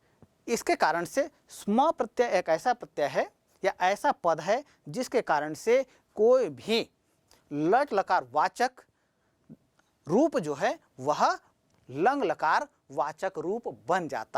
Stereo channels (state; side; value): identical; both; correlation 1.00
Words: इसके कारण से स्म प्रत्यय एक ऐसा प्रत्यय है या ऐसा पद है जिसके कारण से कोई भी लट लकार वाचक रूप जो है वह लंग लकार वाचक रूप बन